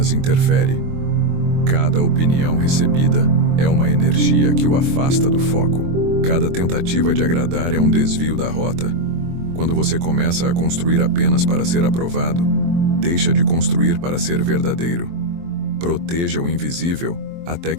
interfere. Cada opinião recebida é uma energia que o afasta do foco. Cada tentativa de agradar é um desvio da rota. Quando você começa a construir apenas para ser aprovado, deixa de construir para ser verdadeiro. Proteja o invisível até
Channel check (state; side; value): late; left; 23 ms